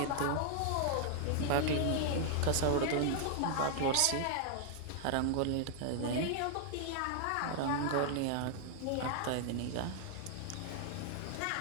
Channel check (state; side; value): different; both; correlation 0.00